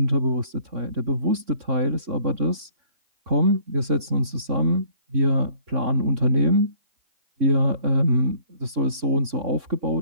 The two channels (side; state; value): left; late; 3.6 ms